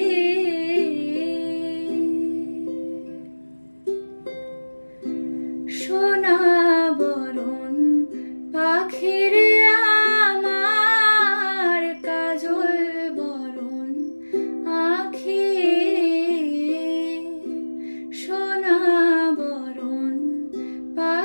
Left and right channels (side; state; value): both; inverted; correlation -1.00